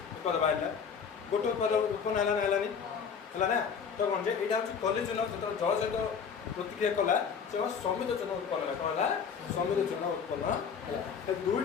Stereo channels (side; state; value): right; quieter; 6.6 dB